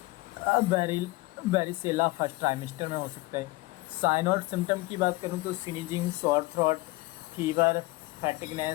बेरिसेला first trimester में हो सकता है। साइन और सिम्टम की बात करूँ तो sneezing, sore throat, fever,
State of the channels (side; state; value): right; quieter; 21.3 dB